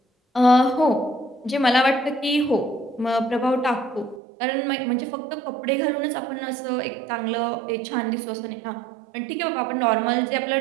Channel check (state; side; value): drops out; left; at 4.2 s